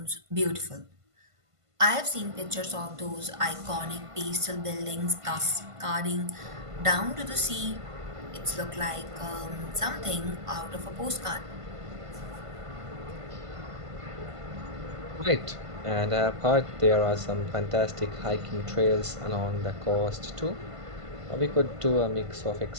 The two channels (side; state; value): left; late; 1.5 ms